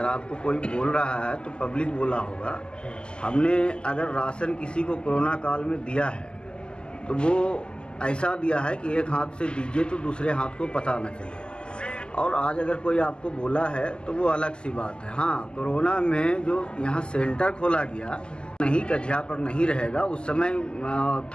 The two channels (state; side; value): late; right; 0.048 ms